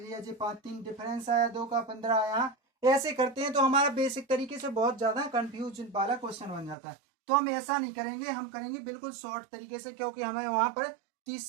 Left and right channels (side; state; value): left; drops out; at 6.8 s